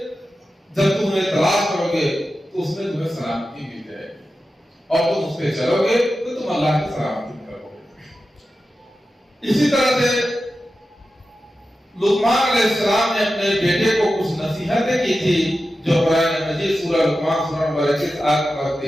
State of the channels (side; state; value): both; normal; correlation 0.92